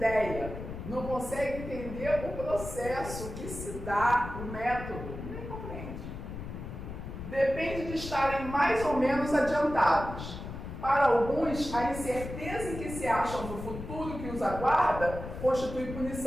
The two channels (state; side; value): noise; left; rumble, 9 dB below the sound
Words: Não consegue entender o processo que se dá, o método. Nem compreende. Depende de estarem mais ou menos adiantados. Para alguns, a incerteza em que se acham do futuro que os aguarda constitui